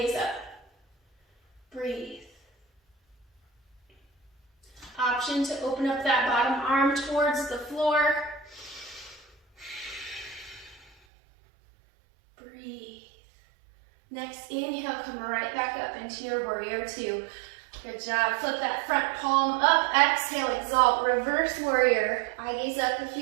up. Breathe. Option to open up that bottom arm towards the floor. Breathe. Next inhale, come right back up into your warrior two. Good job. Flip that front palm up. Exhale, exalt, reverse warrior. Eye gaze up if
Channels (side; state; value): left; drops out; at 10.9 s